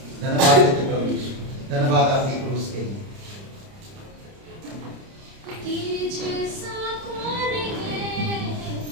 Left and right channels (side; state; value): left; late; 30 ms